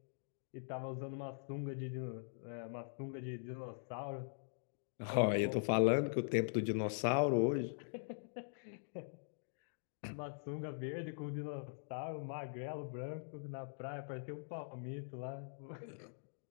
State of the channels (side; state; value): right; silent; digital silence